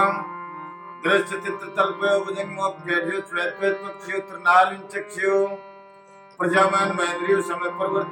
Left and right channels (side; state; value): both; identical; correlation 1.00